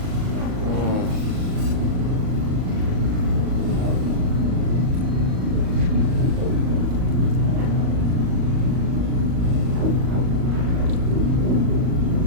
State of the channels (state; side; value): late; left; 38 ms